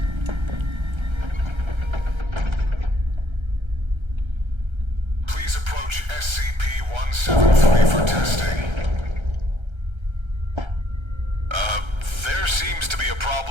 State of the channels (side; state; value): left; late; 1.3 ms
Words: Please approach SCP-173 for testing. There seems to be a